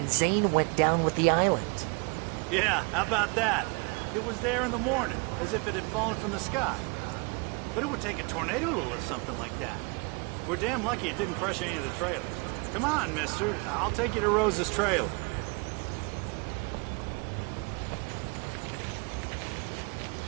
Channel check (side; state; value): left; quieter; 32.2 dB